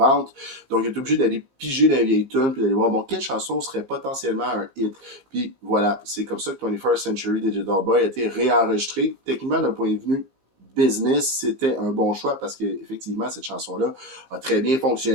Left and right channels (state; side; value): late; left; 19 ms